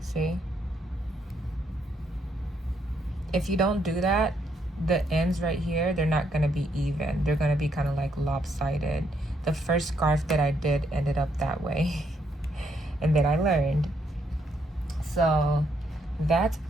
If you don't do that, the ends right here, they're not gonna be even. They're gonna be kind of like lopsided. The first scarf that I did ended up that way. And then I learned. So that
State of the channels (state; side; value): normal; both; correlation 0.74